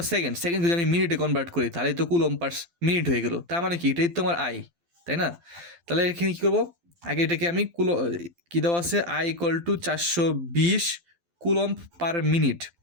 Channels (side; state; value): left; late; 12 ms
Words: সেকেন্ড, সেকেন্ড যদি আমি মিনিটে কনভার্ট করি তাহলে তো কুলম্ব পার মিনিট হয়ে গেল। তার মানে কি এটাই তো আমার আই, তাই না? তাহলে এখানে কী করবো, আগে এটাকে আমি কী দেওয়া আছে, I equal two 420 coulomb per minute.